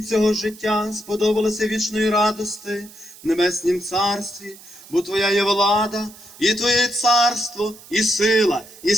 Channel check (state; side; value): noise; right; hiss, 20 dB below the sound